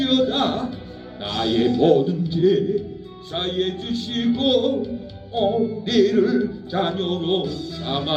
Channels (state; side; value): identical; both; correlation 1.00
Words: 나의 모든 죄 사해 주시고 우리를 자녀로